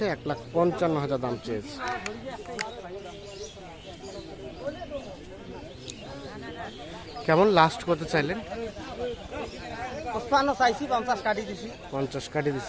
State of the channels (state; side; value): identical; both; correlation 1.00